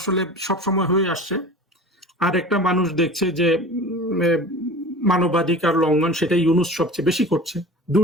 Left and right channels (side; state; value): both; normal; correlation 0.37